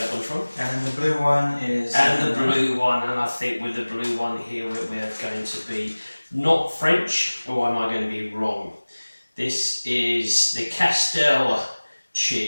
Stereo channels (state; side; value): inverted; both; correlation -1.00